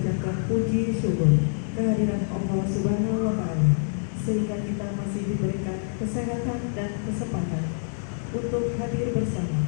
puji syukur kehadiran Allah Subhanahu wa Ta'ala, sehingga kita masih diberikan kesehatan dan kesempatan untuk hadir bersama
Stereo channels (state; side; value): silent; right; 61 dB below the other